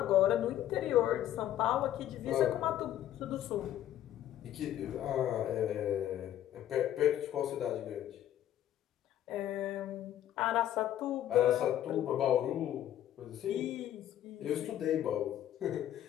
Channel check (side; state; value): right; quieter; 11.9 dB